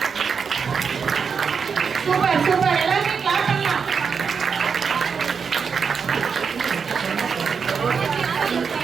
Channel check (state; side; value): quieter; left; 6.0 dB